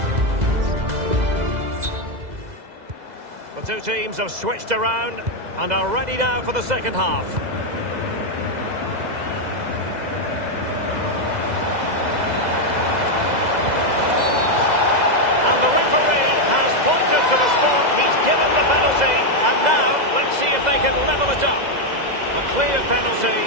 two teams have switched around and are ready now for the second half. And the referee has pointed to the spot. He's given the penalty. And now, let's see if they can level it up. A clear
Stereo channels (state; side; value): late; left; 2.0 ms